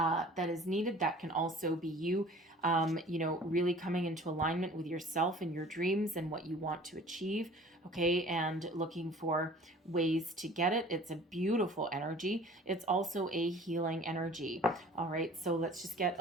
needed. That can also be you, really coming into alignment with yourself and your dreams and what you want to achieve. Okay, and looking for ways to get it. It's a beautiful energy. It's also a healing energy. All right, so let's just get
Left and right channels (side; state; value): both; normal; correlation 0.47